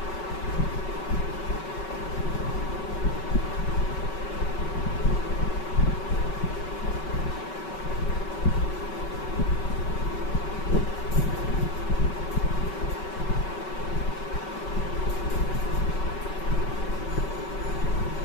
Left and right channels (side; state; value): right; late; 5.3 ms